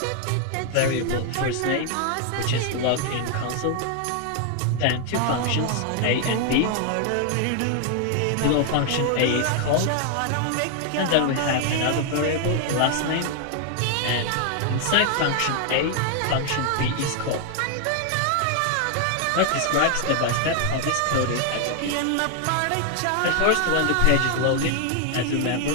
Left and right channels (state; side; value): different; both; correlation 0.00